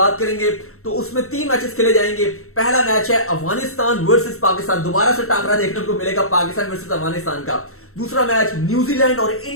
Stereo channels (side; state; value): right; late; 0.63 ms